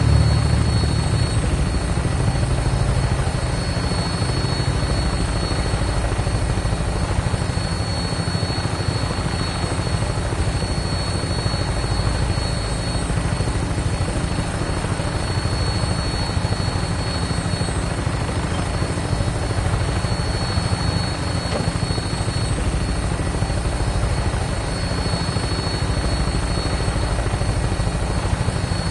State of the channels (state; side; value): identical; both; correlation 1.00